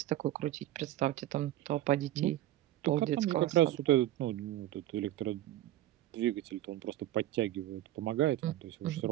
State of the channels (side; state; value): left; quieter; 14.0 dB